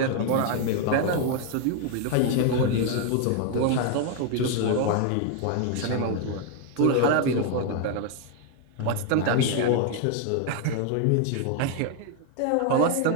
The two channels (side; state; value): both; different; correlation 0.01